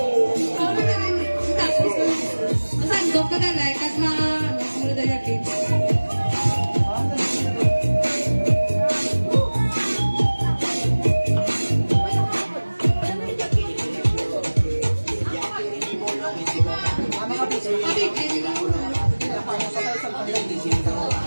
padalay, kag sunod na yakin.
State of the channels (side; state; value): both; inverted; correlation -1.00